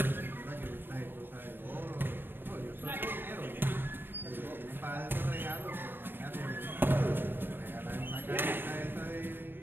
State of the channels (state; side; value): late; left; 0.097 ms